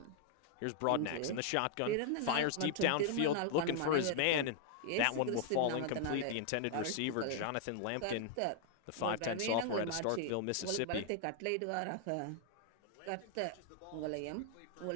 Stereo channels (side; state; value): both; different; correlation 0.00